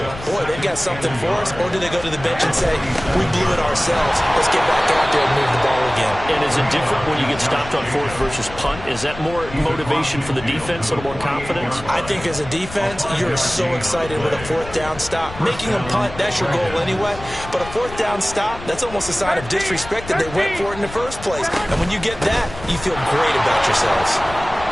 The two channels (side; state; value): left; noise; rumble, 13 dB below the sound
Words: boy, they've got something for us, or do they go to the bench and say, we blew it ourselves, let's get back out there and move the ball again? And is it different when you get stopped on 4th versus punt? Is that more motivation for the defense, a little more confidence? I think as a defense, you're so excited with a 4th down stop. Making them punt, that's your goal anyway, but a 4th down stop, that's almost a sign of disrespect that they went for it in the first place. And when you get that, you feel great about yourselves.